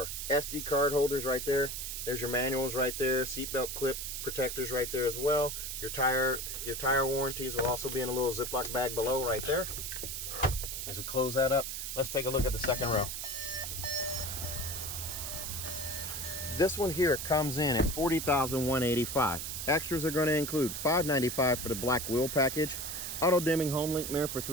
SD card holders right there. There's your manuals right there, seatbelt clip protectors right there as well. Your tire warranties will also be in a little Ziploc bag below right there. As we close that up, let's take a look at the second row. This one here comes in at $40,185. Extras are going to include $595 for the black wheel package, auto dimming Homelink mirror for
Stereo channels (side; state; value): right; noise; hiss, 5 dB below the sound